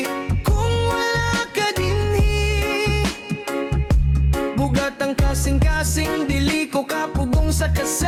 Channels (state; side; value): identical; both; correlation 1.00